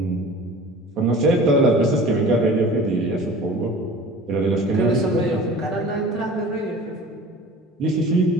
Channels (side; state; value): both; normal; correlation 0.41